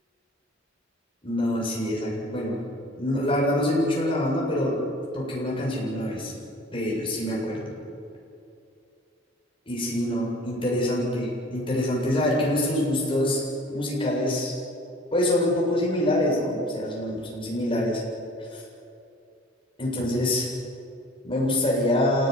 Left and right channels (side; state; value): both; normal; correlation 0.47